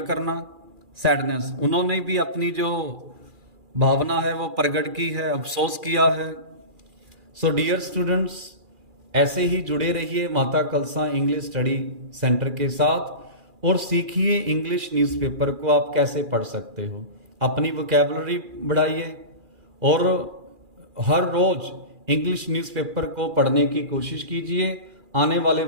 करना, सैडनेस, उन्होंने भी अपनी जो भावना है वो प्रकट की है, अफसोस किया है। सो डियर स्टूडेंट्स, ऐसे ही जुड़े रहिए माता कलसा इंग्लिश स्टडी सेंटर के साथ और सीखिए इंग्लिश न्यूज़पेपर को आप कैसे पढ़ सकते हो। अपनी वोकैबुलरी बढ़ाइए और हर रोज इंग्लिश न्यूज़पेपर को पढ़ने की कोशिश कीजिए। आने वाले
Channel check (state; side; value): late; left; 2.4 ms